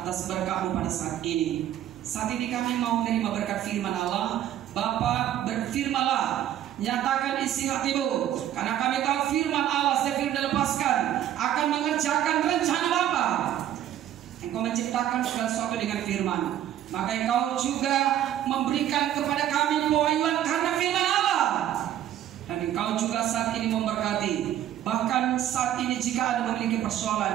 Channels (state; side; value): quieter; left; 11.6 dB